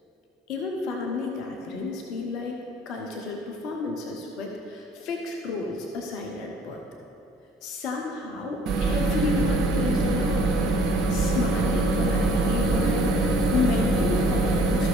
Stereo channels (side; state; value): both; normal; correlation 0.56